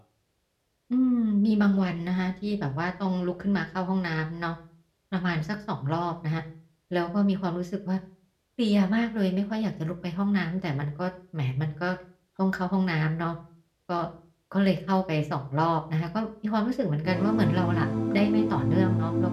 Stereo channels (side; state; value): both; identical; correlation 1.00